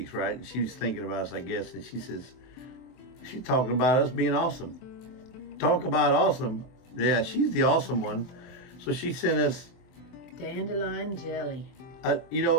right? And she was thinking about us, I guess. And she's talking about us being awesome. Talk about awesome. Yeah, she's the awesome one. So she sent us dandelion jelly.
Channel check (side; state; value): right; late; 23 ms